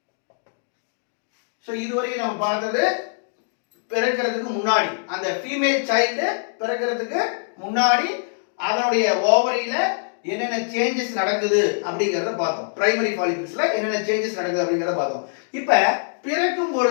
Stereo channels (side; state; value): right; silent; digital silence